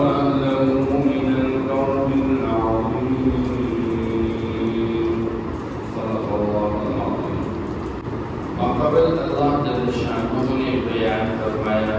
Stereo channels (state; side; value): identical; both; correlation 1.00